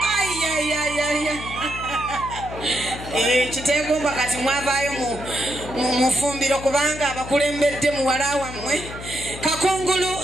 Chitegomba kati mwavayo mufumbiro kubanga abakulembedde muwala wammwe.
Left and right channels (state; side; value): noise; left; hum, 11 dB below the sound